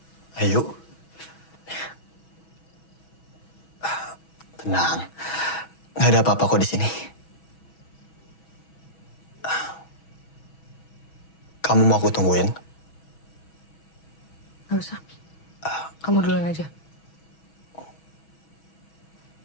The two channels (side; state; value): right; late; 6.2 ms